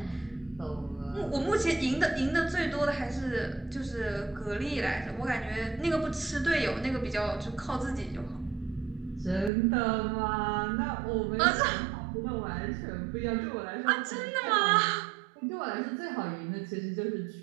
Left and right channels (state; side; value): drops out; left; at 9.5 s